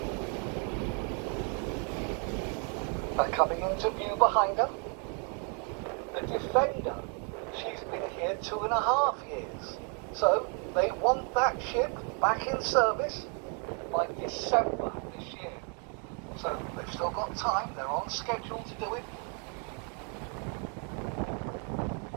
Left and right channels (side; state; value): left; quieter; 39.0 dB